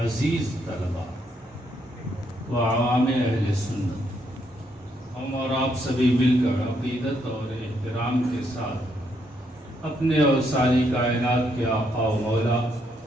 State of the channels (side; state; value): both; normal; correlation 0.75